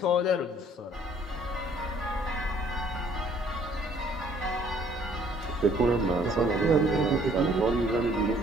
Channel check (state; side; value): normal; both; correlation 0.60